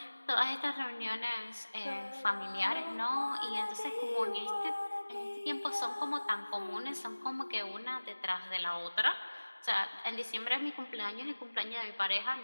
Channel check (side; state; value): both; inverted; correlation -1.00